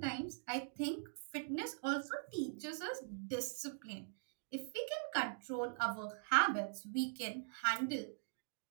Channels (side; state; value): left; silent; digital silence